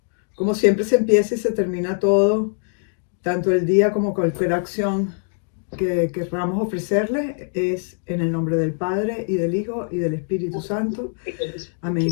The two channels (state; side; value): silent; right; digital silence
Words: siempre se empieza y se termina todo, tanto el día como cualquier acción que queramos ofrecerle, es en el nombre del Padre y del Hijo y del Espíritu Santo. Amén.